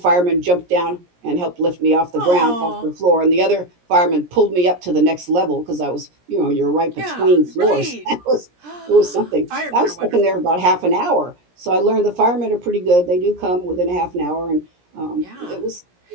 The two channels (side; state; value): left; late; 17 ms